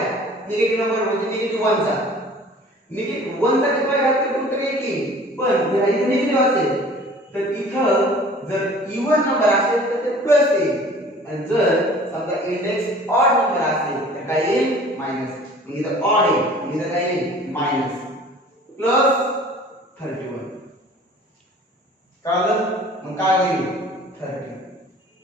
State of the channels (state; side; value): normal; both; correlation 0.48